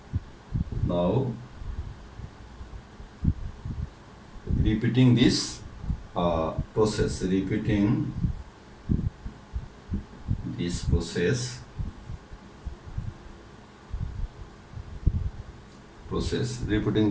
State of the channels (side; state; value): both; identical; correlation 1.00